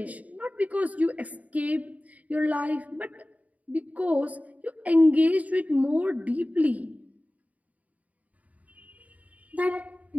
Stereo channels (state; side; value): late; left; 0.071 ms